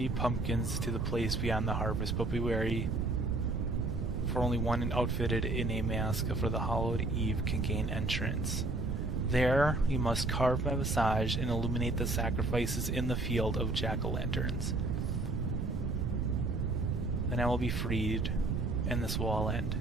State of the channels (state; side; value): noise; right; rumble, 1 dB below the sound